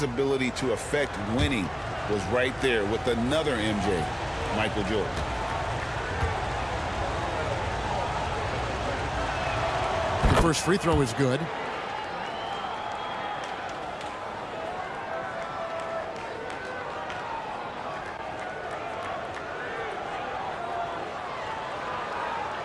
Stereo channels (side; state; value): both; identical; correlation 1.00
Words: ability to affect winning was right there with another MJ, Michael Jordan. The first free throw is good.